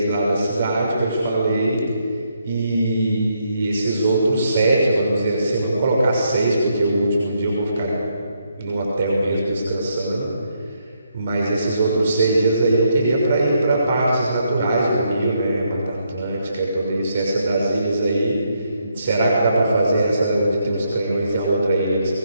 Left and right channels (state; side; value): inverted; both; correlation -0.77